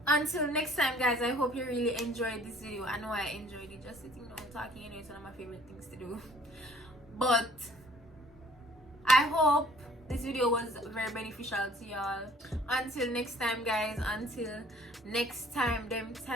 until next time, guys, I hope you really enjoyed this video. I know I enjoyed it. Just sitting down talking, it's one of my favorite things to do. But I hope this video was very beneficial to y'all. Until next time, guys, until next time, them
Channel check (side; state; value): both; normal; correlation 0.55